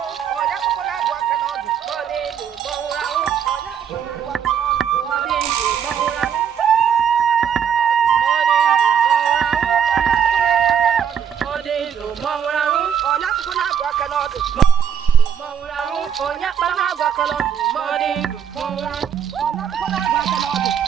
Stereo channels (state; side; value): quieter; left; 8.1 dB